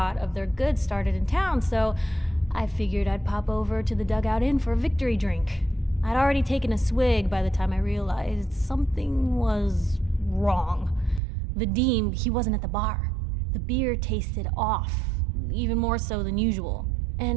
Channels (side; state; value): left; drops out; at 11.2 s